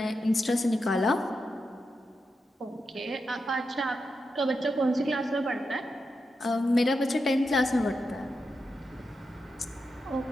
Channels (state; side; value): normal; both; correlation 0.87